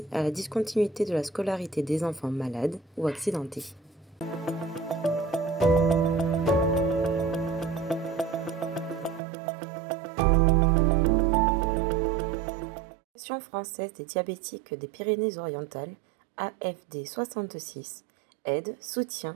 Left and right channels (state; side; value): drops out; left; at 9.2 s